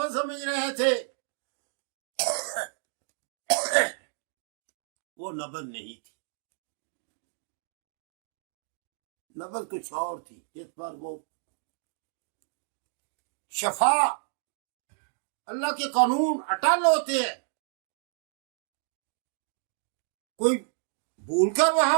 समझ रहे थे वो नबज नहीं थी, नबज कुछ और थी, जिस पर वो शफा, अल्लाह के कानून अटल होते हैं। कोई भूलकर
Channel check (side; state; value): left; silent; digital silence